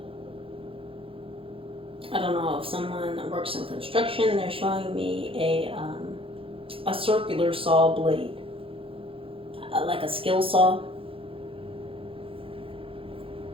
I don't know if someone works in construction. They're showing me a circular saw blade, like a skill saw.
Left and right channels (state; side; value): late; left; 0.27 ms